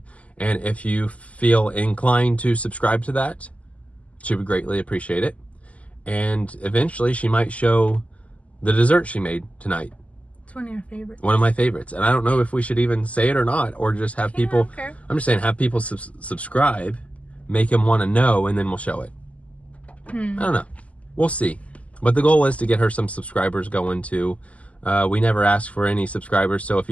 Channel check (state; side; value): late; right; 0.067 ms